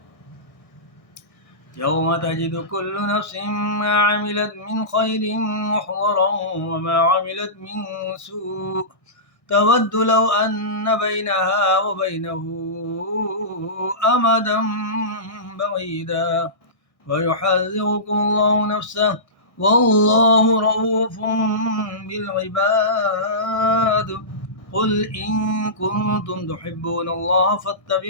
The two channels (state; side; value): late; right; 1.6 ms